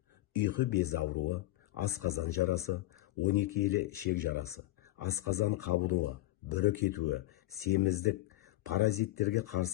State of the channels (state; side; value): quieter; right; 16.9 dB